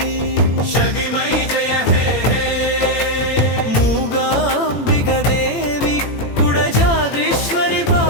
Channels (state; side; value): late; right; 18 ms